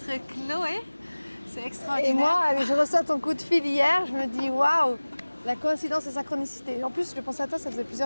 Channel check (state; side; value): inverted; both; correlation -1.00